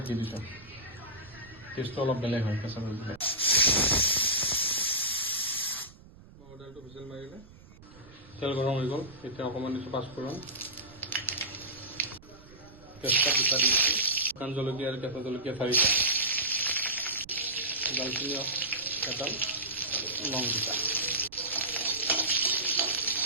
দি দিছোঁ, টেষ্টটো অলপ বেলেগ হয় কেঁচা পেঁয়াজ দিলে। মগৰ দাইলটো হুইচেল মাৰিলে, তেল গৰম হৈ গ'ল, এতিয়া অকণমান দিছোঁ পাঁচফোৰণ, তেজপাত দুটা দি দিছোঁ, শুকান জলকীয়া আৰু কেঁচা জলকীয়া 4টা, দালচিনি এডাল, লং দুটা।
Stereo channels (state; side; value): noise; right; rumble, 22 dB below the sound